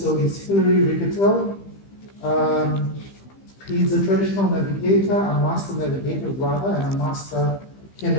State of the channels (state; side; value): late; right; 15 ms